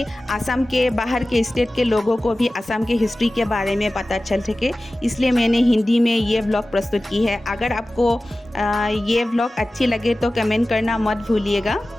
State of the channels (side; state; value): both; normal; correlation 0.96